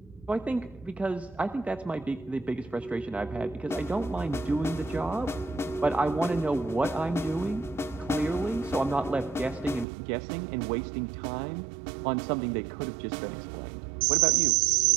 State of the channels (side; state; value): left; drops out; at 9.9 s